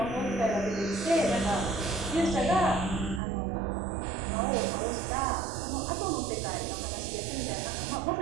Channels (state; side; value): drops out; left; at 3.2 s